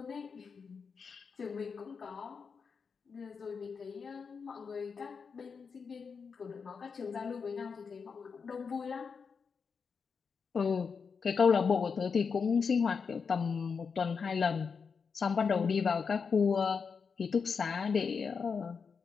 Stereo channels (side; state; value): right; quieter; 5.7 dB